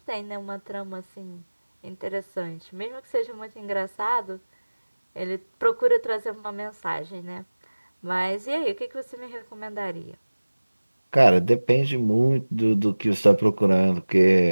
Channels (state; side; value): inverted; both; correlation -1.00